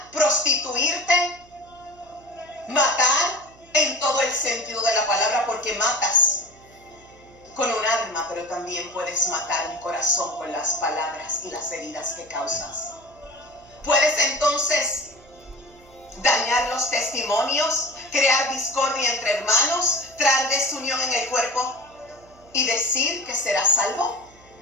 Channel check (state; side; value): noise; right; hum, 26 dB below the sound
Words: prostituirte, matar en todo el sentido de la palabra, porque matas con un arma, pero también puedes matar un corazón con las palabras y las heridas que causas. Puedes entonces dañar los testimonios, crear discordia entre hermanos, traer desunión en el cuerpo y decir que serás salvo.